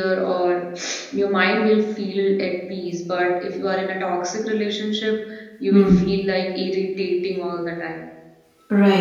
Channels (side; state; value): both; identical; correlation 1.00